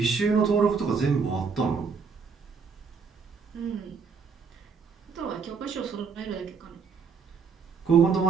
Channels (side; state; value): left; quieter; 5.5 dB